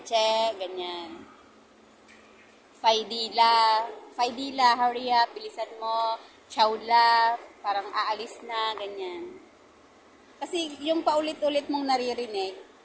ganyan. Faidila, hurry up, bilisan mo, Chowla, parang aalis na, ganyan. Kasi yung paulit-ulit mong naririnig,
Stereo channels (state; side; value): identical; both; correlation 1.00